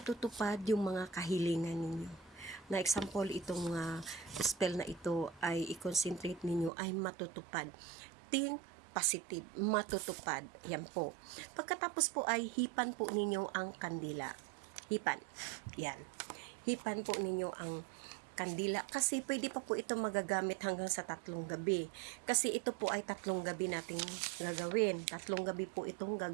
yung mga kahilingan ninyo. Na example, itong spell na ito ay i-concentrate ninyo ay matutupad. Think positive, matutupad. Yan po. Pagkatapos po ay hipan po ninyo ang kandila. Hipan. Yan. Hipan po ninyo ang kandila. Kasi pwede pa po ito magagamit hanggang sa 3 gabi. Kasi ito po ay 3 gabi nating gagawin. 3 gabi po itong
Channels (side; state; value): left; drops out; at 6.7 s